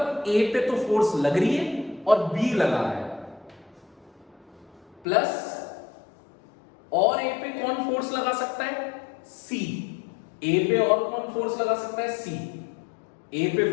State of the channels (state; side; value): drops out; right; at 5.1 s